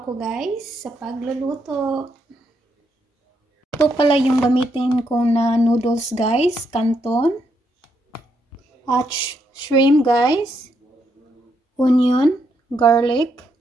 ako guys sa pagluluto. Ito pala yung gamitin ko na noodles guys, canton. At shrimp guys, onion, garlic,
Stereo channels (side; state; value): both; normal; correlation 0.77